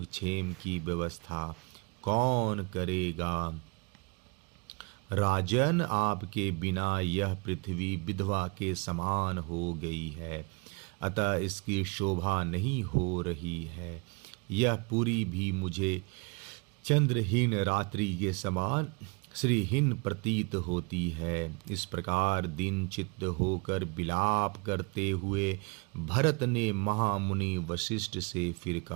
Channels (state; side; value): quieter; left; 31.5 dB